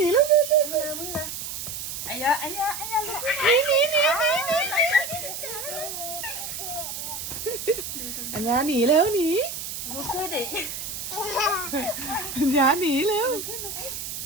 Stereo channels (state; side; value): noise; right; hiss, 6 dB below the sound